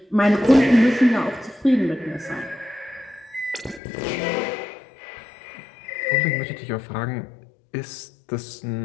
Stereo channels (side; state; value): right; drops out; at 3.8 s